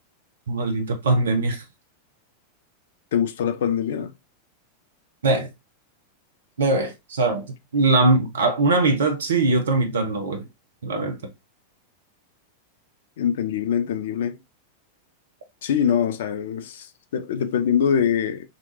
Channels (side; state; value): both; inverted; correlation -0.44